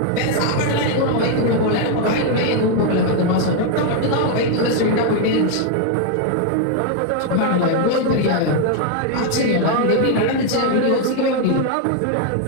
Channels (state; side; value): different; both; correlation 0.00